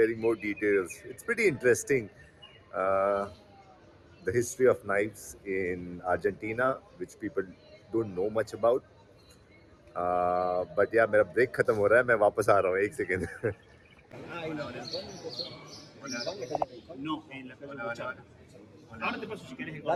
more details. It's pretty interesting. Uh, the history of knives in Argentina, which people don't know much about. But yeah, मेरा break खत्म हो रहा है, मैं वापस आ रहा हूँ एक second. No, en la hola. Ahora te paso si querés el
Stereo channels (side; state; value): both; identical; correlation 1.00